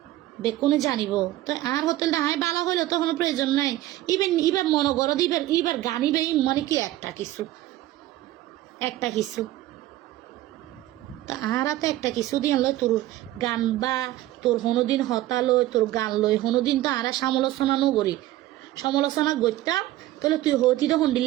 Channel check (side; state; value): left; quieter; 15.3 dB